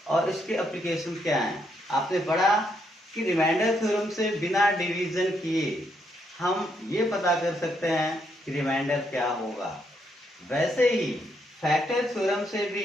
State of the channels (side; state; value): both; normal; correlation 0.76